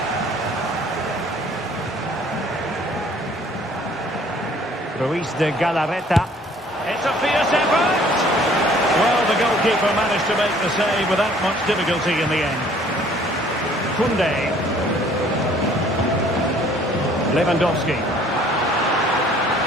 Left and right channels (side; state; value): both; normal; correlation 0.57